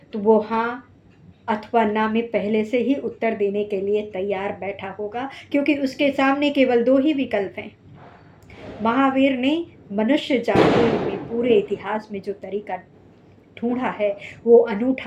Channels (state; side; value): identical; both; correlation 1.00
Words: तो वो हाँ अथवा ना में पहले से ही उत्तर देने के लिए तैयार बैठा होगा, क्योंकि उसके सामने केवल 2 ही विकल्प हैं। महावीर ने मनुष्य जाति में पूरे इतिहास में जो तरीका ढूंढा है वो